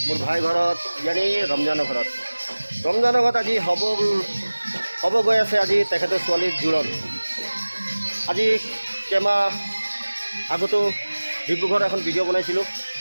মোৰ ভাই ঘৰত, ইয়ানি ৰমজানৰ ঘৰত। ৰমজানৰ ঘৰত আজি হ'ব গৈ আছে আজি তেখেতৰ ছোৱালীৰ জোৰণ। আজি কেইমাহ আগতো ডিব্ৰুগড়ত এখন ভিডিঅ' বনাইছিলোঁ,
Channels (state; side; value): inverted; both; correlation -1.00